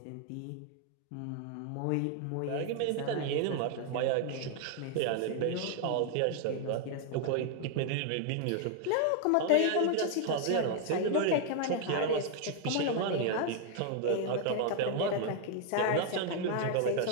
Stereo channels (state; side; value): different; both; correlation 0.00